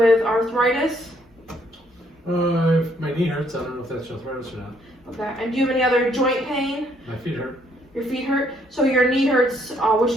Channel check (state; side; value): normal; both; correlation 0.68